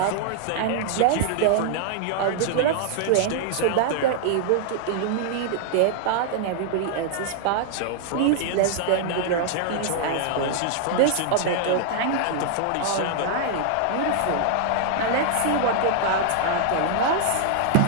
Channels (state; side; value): different; both; correlation -0.01